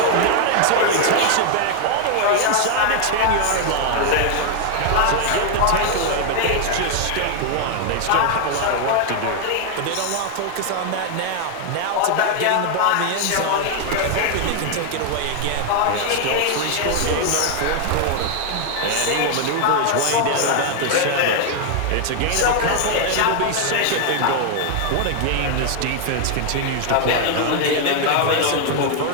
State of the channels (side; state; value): both; different; correlation 0.00